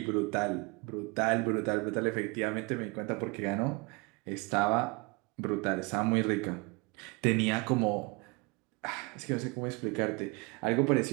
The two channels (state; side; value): quieter; left; 27.9 dB